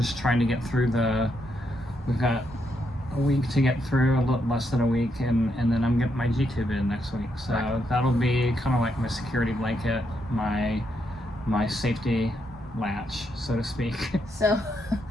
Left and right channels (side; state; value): both; normal; correlation 0.79